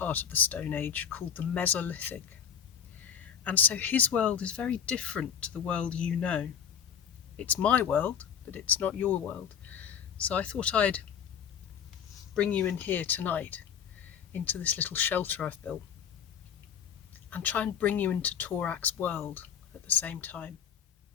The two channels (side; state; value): right; quieter; 8.1 dB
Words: of the Stone Age called the Mesolithic. And so his world is very different to the world you know. It's my world, but it's not your world. So I thought I'd bring you in here tonight, into this little shelter I've built, and try and bring you into Torak's world at the same time.